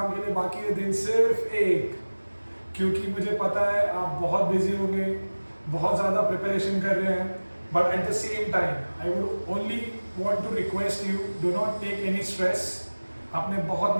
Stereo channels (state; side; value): inverted; both; correlation -1.00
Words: के लिए बाकी है दिन सिर्फ एक, क्योंकि मुझे पता है आप बहुत बिजी होंगे, बहुत ज्यादा प्रिपरेशन कर रहे हैं. But at the same time I would only want to request you, do not take any stress. आपने बहुत